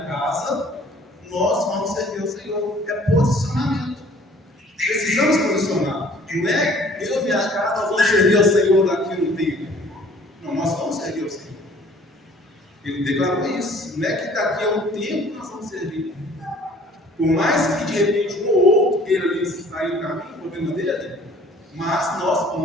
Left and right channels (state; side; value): normal; both; correlation 0.54